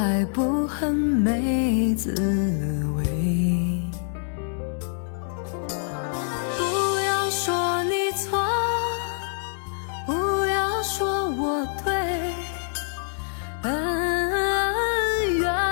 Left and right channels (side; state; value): right; silent; 60 dB below the other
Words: 不恨没滋味。不要说你错，不要说我对，恩怨